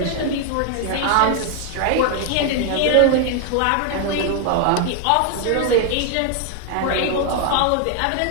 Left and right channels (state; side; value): different; both; correlation 0.00